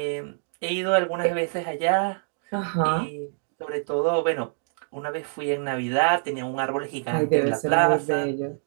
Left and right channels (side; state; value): left; silent; digital silence